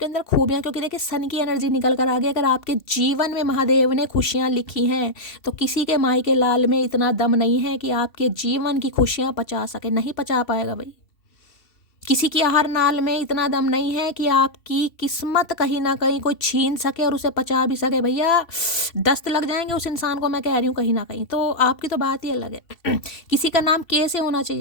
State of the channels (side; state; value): right; late; 2.7 ms